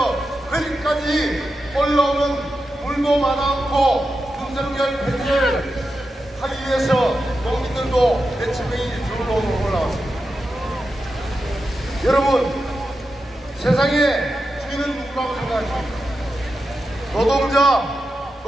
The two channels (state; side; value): normal; both; correlation 0.89